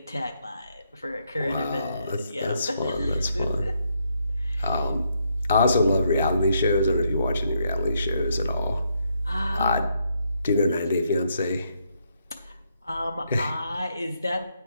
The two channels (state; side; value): inverted; both; correlation -0.76